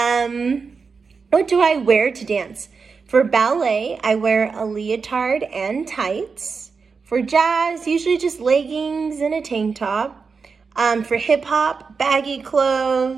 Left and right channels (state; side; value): quieter; left; 5.1 dB